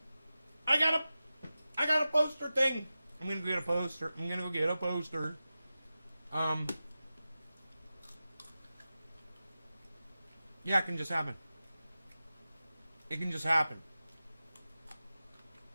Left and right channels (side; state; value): both; inverted; correlation -0.94